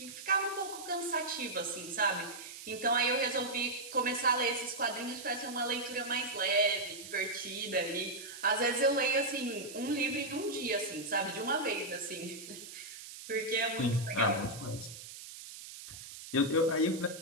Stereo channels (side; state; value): right; noise; hiss, 13 dB below the sound